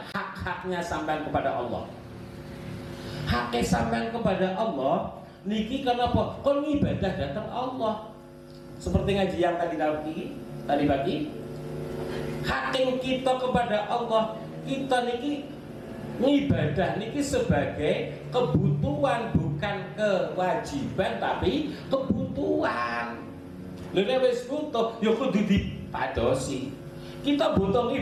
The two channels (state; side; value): identical; both; correlation 1.00